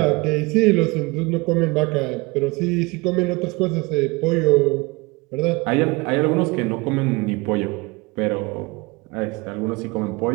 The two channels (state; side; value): quieter; left; 25.4 dB